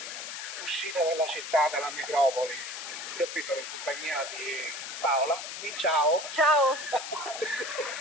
uscita dalla città, dalla metropoli. Io qui sono in compagnia di Paola, di ciao. Ciao!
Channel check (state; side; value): noise; left; hiss, 8 dB below the sound